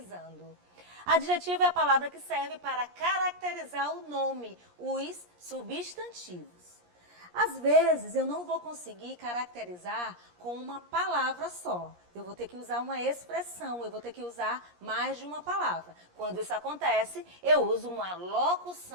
Adjetivo é a palavra que serve para caracterizar o nome, os substantivos. Às vezes, eu não vou conseguir caracterizar com uma palavra só. Eu vou ter que usar uma expressão, eu vou ter que usar mais de uma palavra. Quando isso acontece, eu uso uma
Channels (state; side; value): late; left; 17 ms